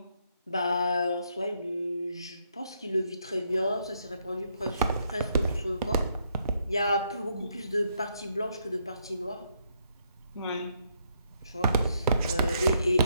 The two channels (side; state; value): both; inverted; correlation -0.74